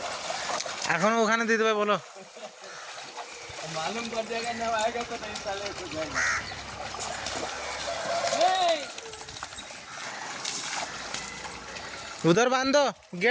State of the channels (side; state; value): both; identical; correlation 1.00